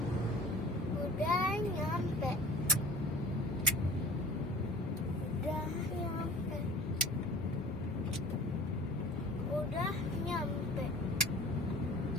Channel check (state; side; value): normal; both; correlation 0.43